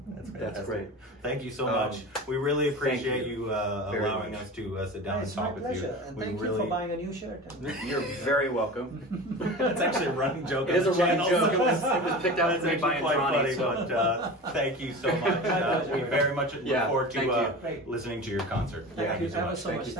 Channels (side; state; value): both; normal; correlation 0.32